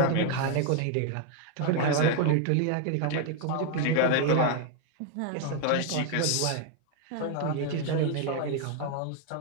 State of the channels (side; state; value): both; different; correlation 0.00